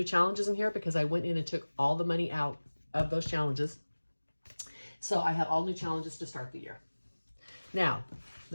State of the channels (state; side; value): inverted; both; correlation -1.00